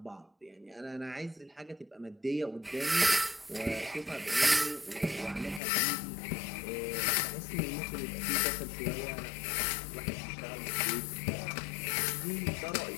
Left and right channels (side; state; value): right; drops out; at 5.6 s